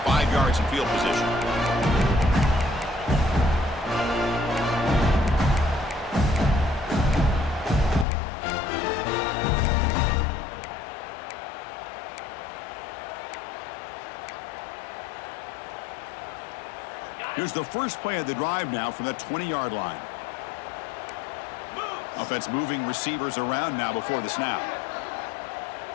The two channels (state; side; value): drops out; right; at 8.1 s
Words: yards in field position. Here's the first play of the drive now from the 20-yard line. Offense moving receivers around now before the snap.